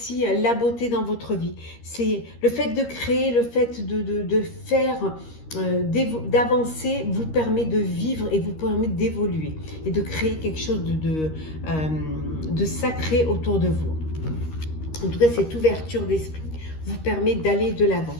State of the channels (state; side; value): late; right; 13 ms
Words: la beauté dans votre vie. C'est le fait de créer, le fait de faire, d'avancer vous permet de vivre et vous permet d'évoluer et de créer quelque chose de sacré autour de vous. En tout cas, cette ouverture d'esprit vous permet d'aller de l'avant